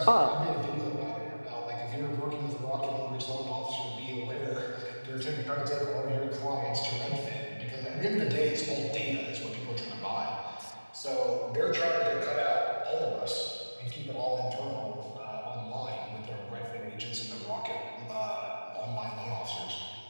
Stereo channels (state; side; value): inverted; both; correlation -1.00